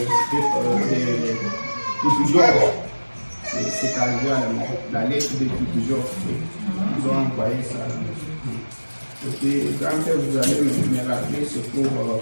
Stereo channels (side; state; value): both; inverted; correlation -1.00